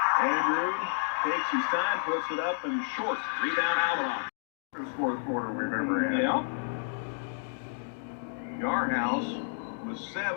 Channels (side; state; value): right; silent; digital silence